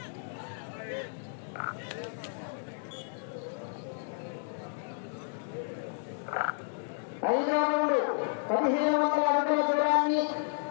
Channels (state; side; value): silent; right; digital silence